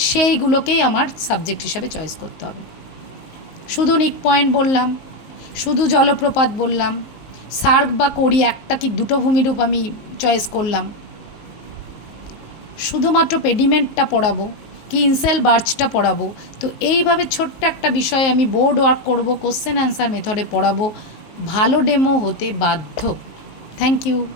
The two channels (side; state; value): right; late; 19 ms